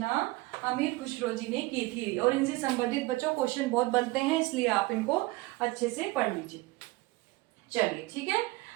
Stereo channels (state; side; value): quieter; left; 21.2 dB